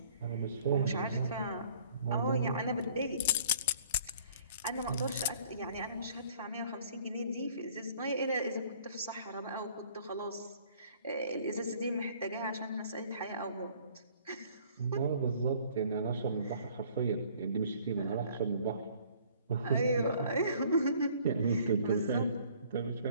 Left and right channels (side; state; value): both; inverted; correlation -0.56